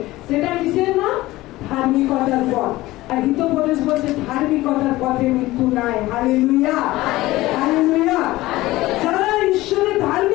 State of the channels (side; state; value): right; quieter; 18.0 dB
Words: সেটা কিসের নাম? ধার্মিকতার পথ। আর হিতোপদেশ বলছে ধার্মিকতার পথে মৃত্যু নাই। Hallelujah, hallelujah. যারা ঈশ্বরের